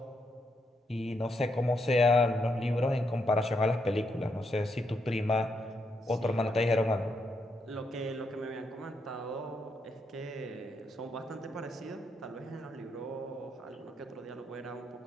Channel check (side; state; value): both; normal; correlation 0.79